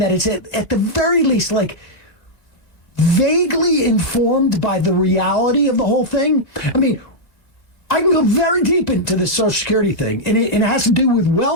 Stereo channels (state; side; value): late; right; 2.0 ms